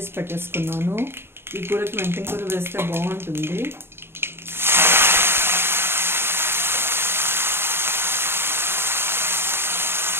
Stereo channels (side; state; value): left; late; 0.11 ms